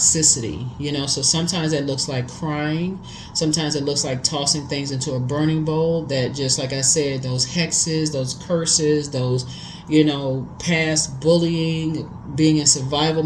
So sometimes it looks like crying. Sometimes it looks like tossing things into a burning bowl that, just like I said, those hexes, those curses, those, past bullying, being in survival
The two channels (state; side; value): identical; both; correlation 1.00